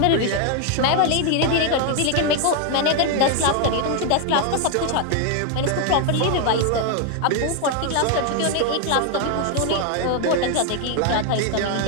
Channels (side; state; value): both; different; correlation 0.01